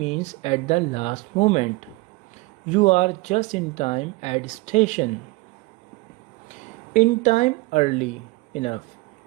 at the last moment. You are just in time at station. In time, early enough.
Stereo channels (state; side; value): quieter; left; 23.1 dB